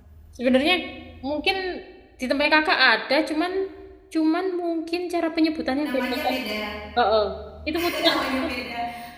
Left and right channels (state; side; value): identical; both; correlation 1.00